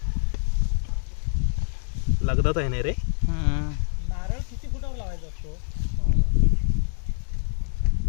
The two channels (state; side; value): silent; right; 61 dB below the other